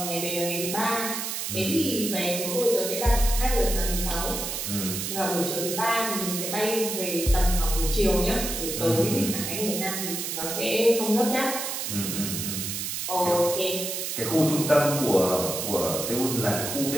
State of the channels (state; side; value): noise; right; hiss, 3 dB below the sound